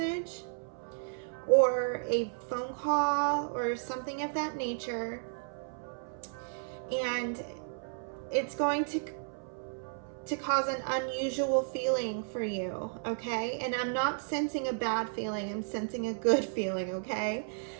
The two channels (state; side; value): silent; left; 56 dB below the other